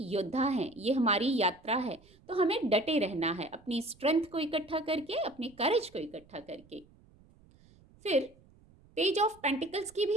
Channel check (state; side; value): noise; right; rumble, 27 dB below the sound